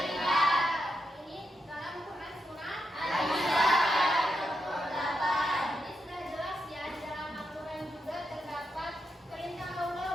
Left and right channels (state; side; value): normal; both; correlation 0.85